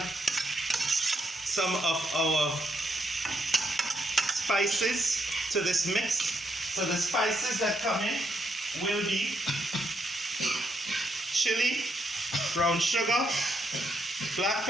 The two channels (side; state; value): both; normal; correlation 0.78